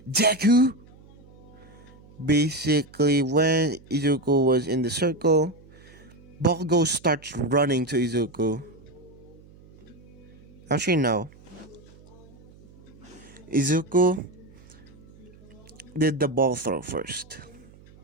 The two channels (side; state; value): right; noise; hum, 23 dB below the sound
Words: "Deku." Basically, when Izuku was in the circle, Bakugo starts running to Izuku. Actually, no. Izuku did the ball throw first,